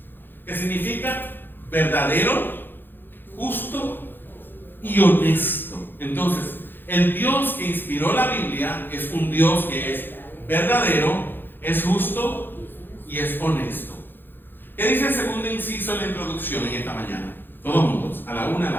que significa verdadero, justo y honesto. Entonces, el Dios que inspiró la Biblia es un Dios que es verdadero, es justo y es honesto. ¿Qué dice el segundo inciso en la introducción en esta mañana? Todos juntos, a la 1, a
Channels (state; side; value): late; right; 0.097 ms